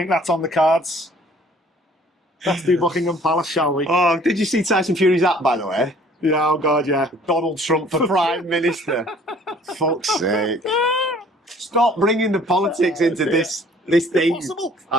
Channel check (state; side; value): normal; both; correlation 0.55